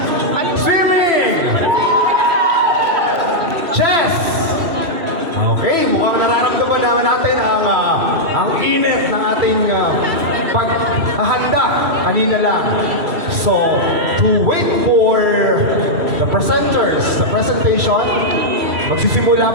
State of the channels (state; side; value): late; left; 3.0 ms